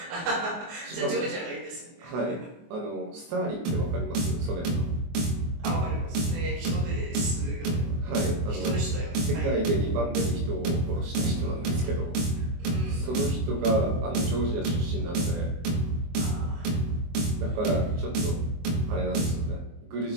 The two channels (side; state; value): left; late; 24 ms